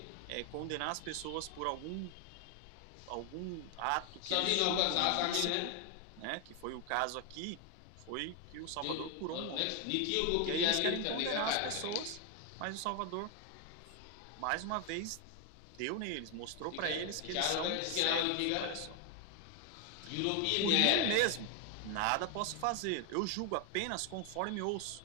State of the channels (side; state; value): both; different; correlation 0.00